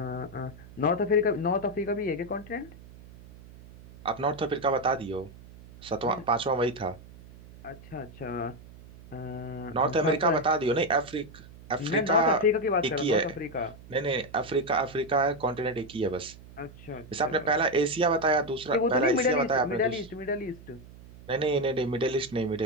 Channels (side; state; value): right; noise; hum, 19 dB below the sound